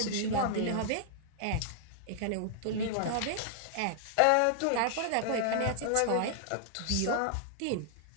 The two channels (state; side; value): different; both; correlation -0.01